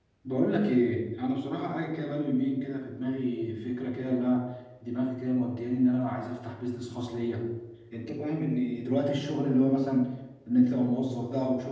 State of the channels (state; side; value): identical; both; correlation 1.00